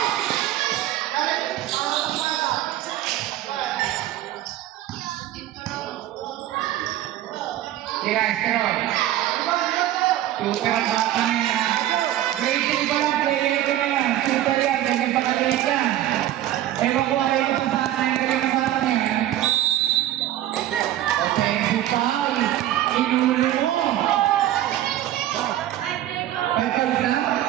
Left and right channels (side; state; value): left; quieter; 13.2 dB